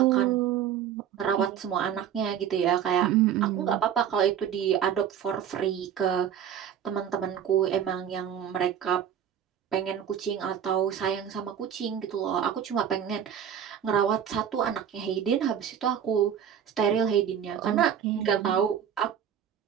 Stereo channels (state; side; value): quieter; left; 9.0 dB